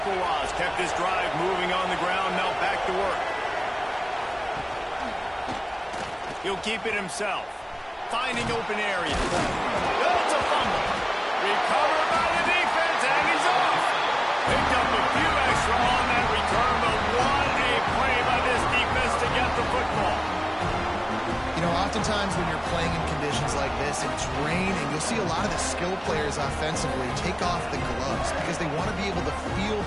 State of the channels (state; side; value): identical; both; correlation 1.00